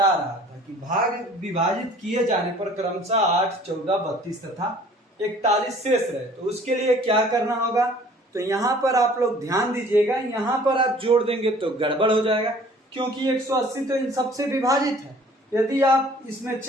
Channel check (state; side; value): normal; both; correlation 0.52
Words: रहा था कि भाग विभाजित किए जाने पर क्रमशः 8, 14, 32 तथा 41 शेष रहे, तो उसके लिए क्या करना होगा, तो यहाँ पर आप लोग ध्यान दीजिएगा। यहाँ पर आप जोड़ देंगे तो गड़बड़ हो जाएगा, क्योंकि 180 तो इन सबसे विभाजित है। यदि आप इसमें